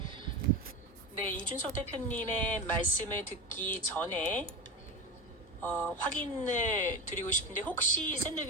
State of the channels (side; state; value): both; normal; correlation 0.23